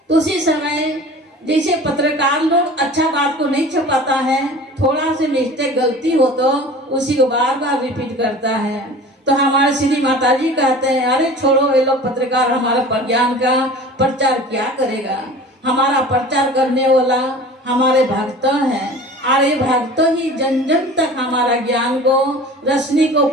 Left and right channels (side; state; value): both; normal; correlation 0.40